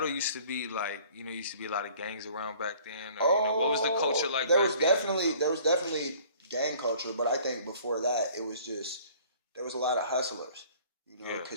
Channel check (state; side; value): inverted; both; correlation -0.53